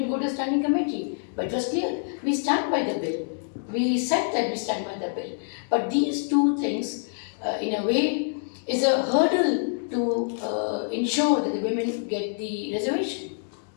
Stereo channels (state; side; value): silent; right; 61 dB below the other